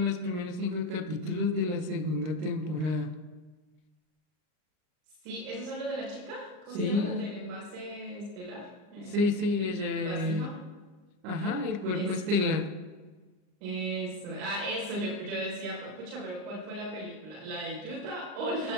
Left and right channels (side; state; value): left; late; 39 ms